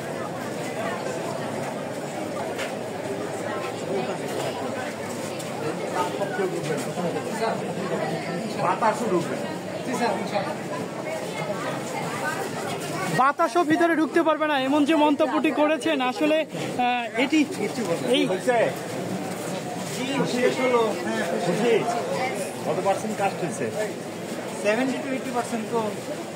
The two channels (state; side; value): identical; both; correlation 1.00